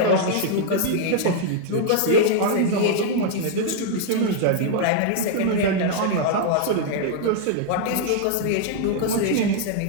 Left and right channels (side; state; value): both; different; correlation 0.00